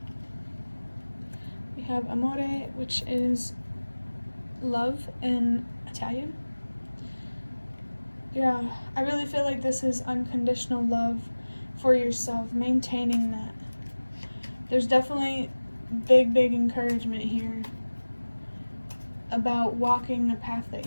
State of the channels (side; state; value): both; inverted; correlation -1.00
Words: We have amore, which is love in Italian. Yeah, I really feel like this is unconditional love for yourself, maintaining that. There's definitely big encouragement here about walking the path that